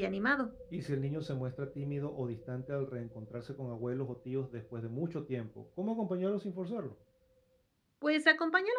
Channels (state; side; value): identical; both; correlation 1.00